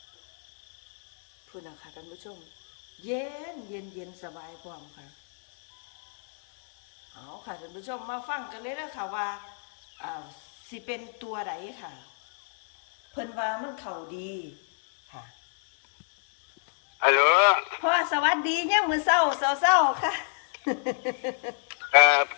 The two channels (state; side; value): silent; right; 60 dB below the other